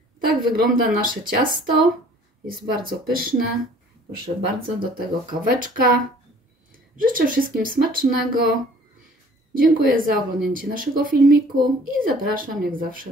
Tak wygląda nasze ciasto. Jest bardzo pyszne. Proszę bardzo, do tego kaweczka. Życzę wszystkim smacznego. Dziękuję za oglądnięcie naszego filmiku i zapraszam jak zawsze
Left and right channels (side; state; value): both; normal; correlation 0.53